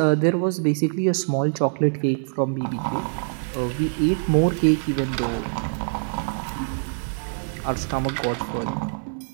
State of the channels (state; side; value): silent; left; digital silence